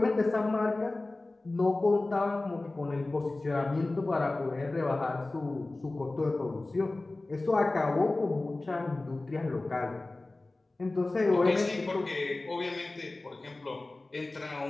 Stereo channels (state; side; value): quieter; right; 3.0 dB